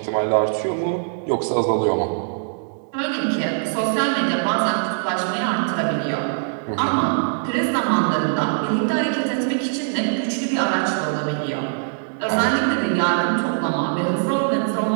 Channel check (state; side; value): silent; left; digital silence